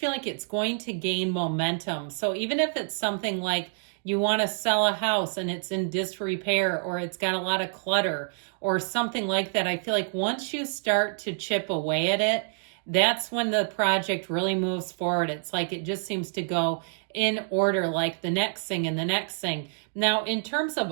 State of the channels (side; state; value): left; silent; digital silence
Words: like it's going to gain momentum. So even if it's something like you want to sell a house and it's in disrepair or it's got a lot of clutter or something like that, I feel like once you start to chip away at it, that's when the project really moves forward. It's like it just seems to go in order, like the next thing and the next thing. Now, in terms of